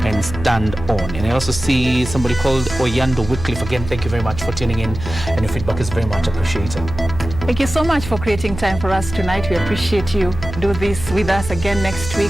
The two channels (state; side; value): noise; right; hum, 10 dB below the sound